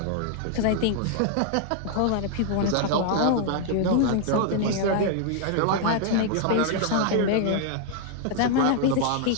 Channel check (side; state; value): both; different; correlation 0.00